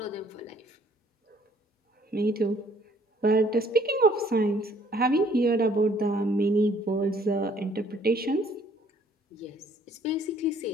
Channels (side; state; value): both; normal; correlation 0.61